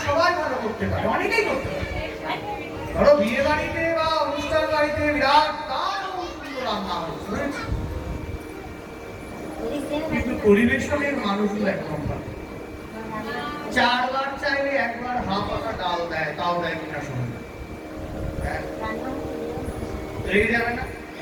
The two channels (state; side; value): identical; both; correlation 1.00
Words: সবাই ভালো করতে পারে, অনেকেই করতে পারে। ধরো বিয়ে বাড়িতে বা অনুষ্ঠান বাড়িতে বিরাট সুন্দর রান্না হয়েছে, কিন্তু পরিবেশনের মানুষগুলো একদম ভালো। 4 বার চাইলে 1 বার হাফ পাতা ডাল দেয়, তাও দেয় কিনা শুনুন, রেগে যাবে না?